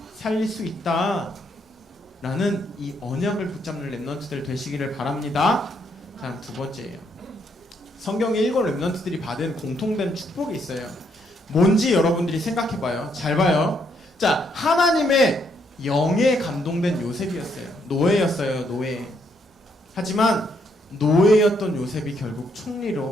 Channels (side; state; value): both; normal; correlation 0.73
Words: 살릴 수 있다 라는 이 언약을 붙잡는 렘넌트들 되시기를 바랍니다. 자, 두 번째예요. 성경의 일곱 렘넌트들이 받은 공통된 축복이 있어요. 뭔지 여러분들이 생각해봐요. 잘 봐요. 자, 하나님의 영에 감동된 요셉이었어요. 노예였어요. 노예. 하지만 노예였던 요셉이 결국